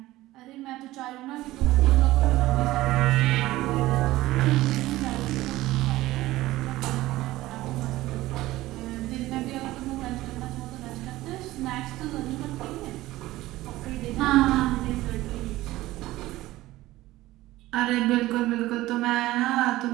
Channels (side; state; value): left; quieter; 17.0 dB